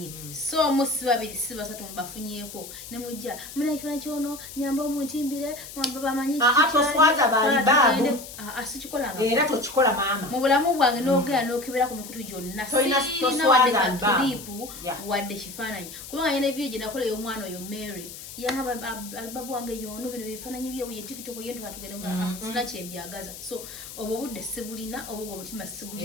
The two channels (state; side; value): noise; left; hiss, 13 dB below the sound